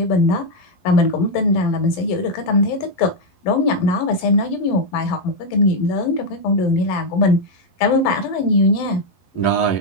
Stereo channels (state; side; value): late; right; 11 ms